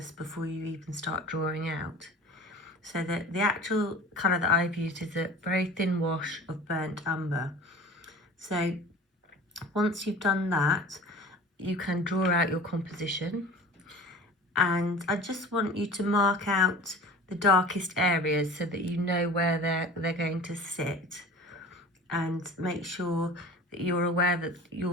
before you even start drawing out. So that the actual colour that I've used is a very thin wash of burnt umber. So once you've done that, you can draw out your composition, and I just want you to mark out the darkest areas so that you know where they're going to sit, and make sure that you're aware that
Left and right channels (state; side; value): normal; both; correlation 0.40